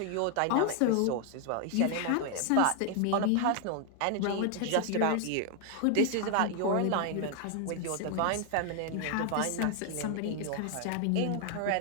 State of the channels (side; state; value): both; different; correlation 0.00